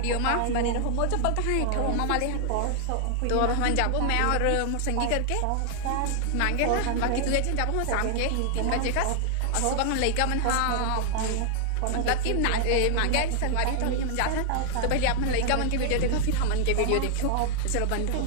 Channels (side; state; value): both; different; correlation 0.00